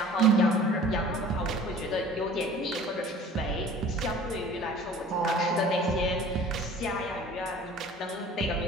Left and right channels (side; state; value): both; normal; correlation 0.46